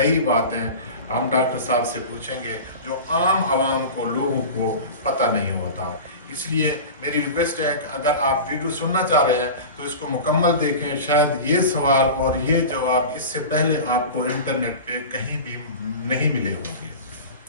बातें हम डॉक्टर साहब से पूछेंगे जो आम आवाम को, लोगों को पता नहीं होता। इसलिए मेरी रिक्वेस्ट है कि अगर आप वीडियो सुनना चाह रहे हैं तो इसको मुकम्मल देखें। शायद ये सवाल और ये जवाब इससे पहले आपको इंटरनेट पे कहीं भी नहीं मिले होंगे।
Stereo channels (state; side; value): inverted; both; correlation -0.32